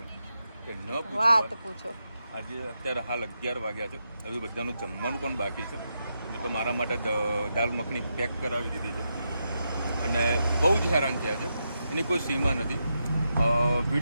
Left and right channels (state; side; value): inverted; both; correlation -0.85